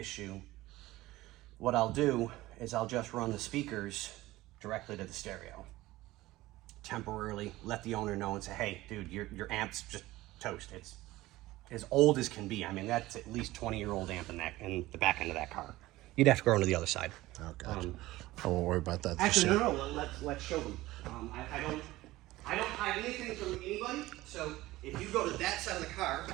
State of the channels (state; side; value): quieter; left; 17.7 dB